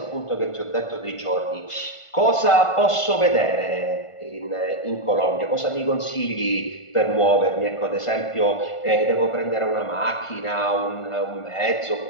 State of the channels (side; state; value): right; late; 1.5 ms